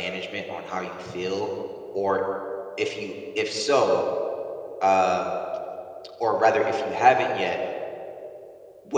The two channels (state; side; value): identical; both; correlation 1.00